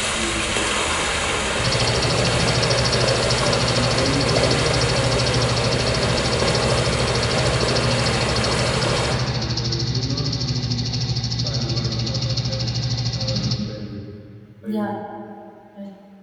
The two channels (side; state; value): both; identical; correlation 1.00